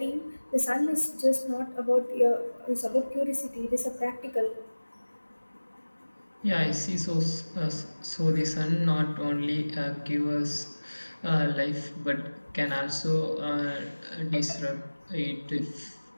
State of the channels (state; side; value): inverted; both; correlation -1.00